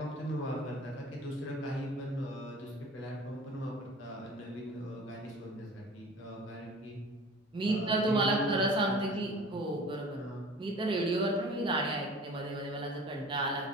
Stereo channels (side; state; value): both; normal; correlation 0.43